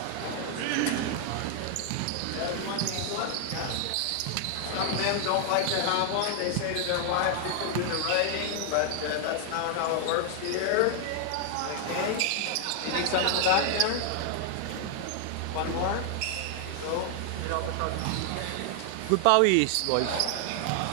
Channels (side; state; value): both; different; correlation 0.00